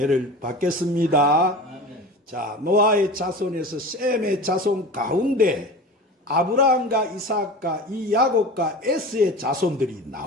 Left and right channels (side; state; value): both; normal; correlation 0.34